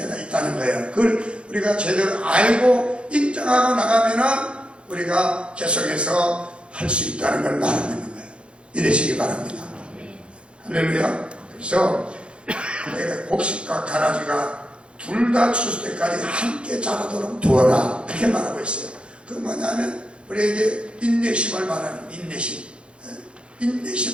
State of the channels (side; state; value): left; late; 0.057 ms